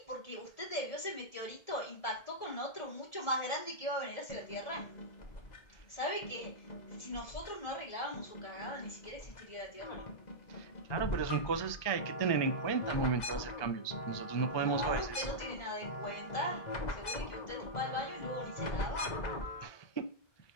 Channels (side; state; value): right; late; 2.0 ms